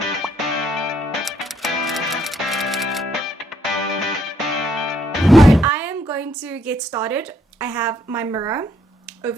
I am going to get started. I have my mirror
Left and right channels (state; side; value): normal; both; correlation 0.71